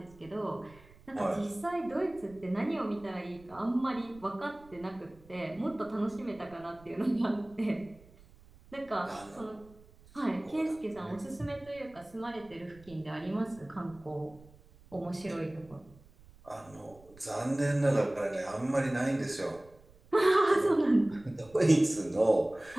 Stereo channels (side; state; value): right; noise; rumble, 24 dB below the sound